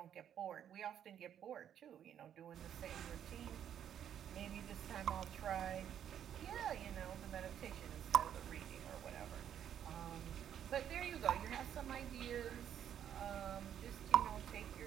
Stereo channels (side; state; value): left; quieter; 9.6 dB